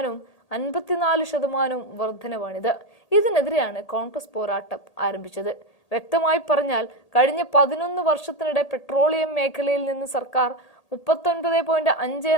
54% വർധനവാണിത്. ഇതിനെതിരെയാണ് കോൺഗ്രസ് പോരാട്ടം ആരംഭിച്ചത്. വ്യക്തമായി പറഞ്ഞാൽ, കഴിഞ്ഞ 11 വർഷത്തിനിടെ പെട്രോളിയം മേഖലയിൽ നിന്ന് സർക്കാർ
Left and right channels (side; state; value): right; late; 1.8 ms